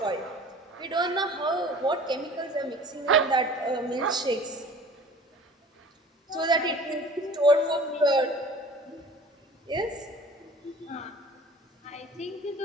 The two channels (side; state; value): both; normal; correlation 0.44